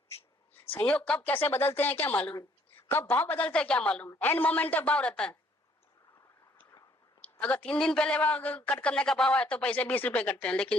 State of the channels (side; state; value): both; normal; correlation 0.64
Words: संयोग कब कैसे बदलते हैं क्या मालूम, कब भाव बदलते हैं क्या मालूम। एंड मोमेंट तक भाव रहता है। अगर 3 दिन पहले कट करने का भाव है तो पैसे 20 रुपए कटते हैं,